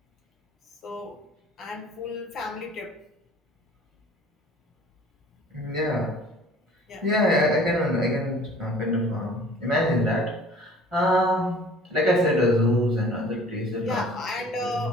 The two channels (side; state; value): both; normal; correlation 0.49